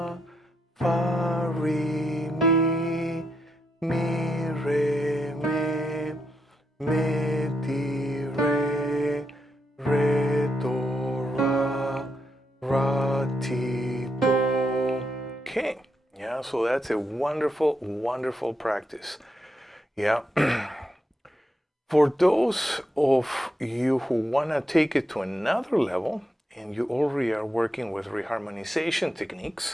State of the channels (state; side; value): normal; both; correlation 0.82